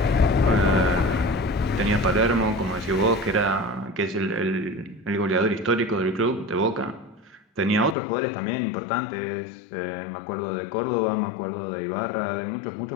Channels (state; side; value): drops out; right; at 8.0 s